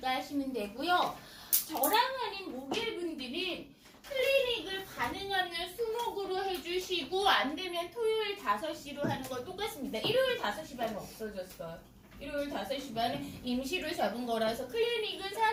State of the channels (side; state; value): both; identical; correlation 1.00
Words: 하시면 되고요. 저랑 하는 목요일 분들은 클리닉을 가능하면 수목으로 해주시고 안 되면 토요일 5시로 하는 거 똑같습니다. 일요일 5시 반은 없어졌어요. 일요일 5시 반은 임시로 잡은 거라서 클리닉은